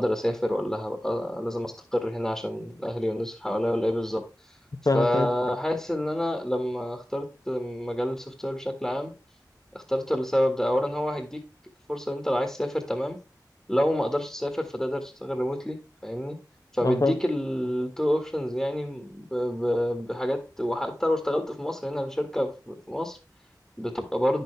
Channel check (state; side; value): normal; both; correlation 0.95